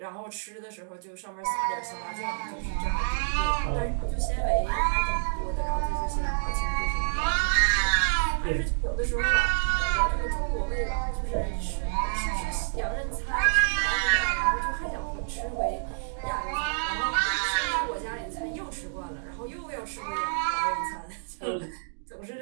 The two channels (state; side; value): silent; left; digital silence